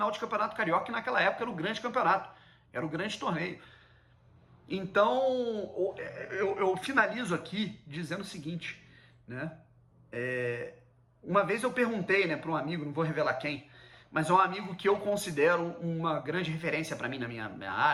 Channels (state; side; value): identical; both; correlation 1.00